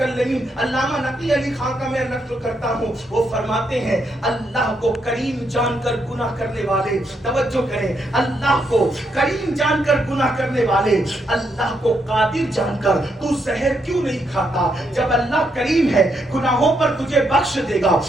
علامہ نقی علی خان کا میں نقل کرتا ہوں، وہ فرماتے ہیں اللہ کو کریم جان کر گناہ کرنے والے، توجہ کریں، اللہ کو کریم جان کر گناہ کرنے والے، اللہ کو قادر جان کر تو زہر کیوں نہیں کھاتا؟ جب اللہ کریم ہے، گناہوں پر تجھے بخش دے گا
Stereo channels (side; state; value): both; normal; correlation 0.78